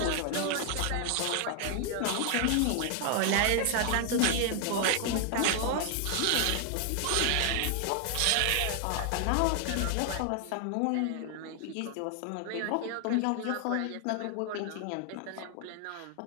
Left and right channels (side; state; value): both; different; correlation 0.00